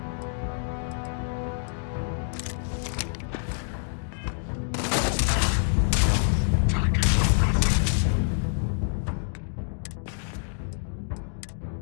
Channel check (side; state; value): right; silent; digital silence